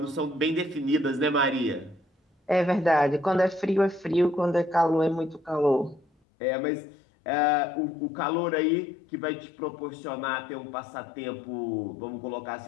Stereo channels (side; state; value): right; drops out; at 6.1 s